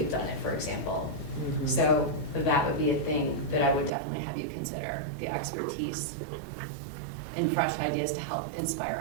done it, for example. Mm-hmm. So that would be a thing that I would definitely have you consider, the expertise and fresh ideas to help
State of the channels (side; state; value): left; drops out; at 3.9 s